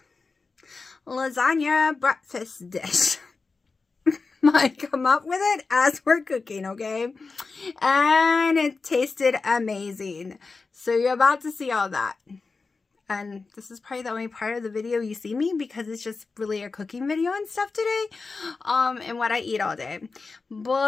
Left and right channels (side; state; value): right; quieter; 4.2 dB